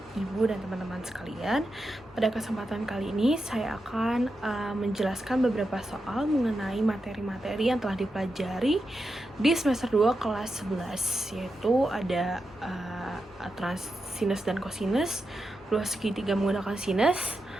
Ibu dan teman-teman sekalian. Pada kesempatan kali ini, saya akan menjelaskan beberapa soal mengenai materi-materi yang telah dipelajari di semester 2 kelas 11, yaitu ada aturan sinus dan kosinus, luas segitiga menggunakan sinus,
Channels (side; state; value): both; normal; correlation 0.88